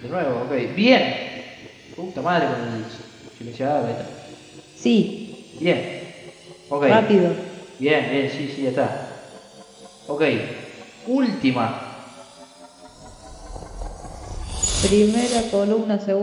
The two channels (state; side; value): identical; both; correlation 1.00